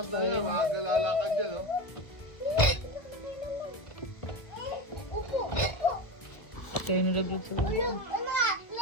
na yan, maaga lalakad yan, oh. Kaya nalaglag sa mga.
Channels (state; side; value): late; right; 1.6 ms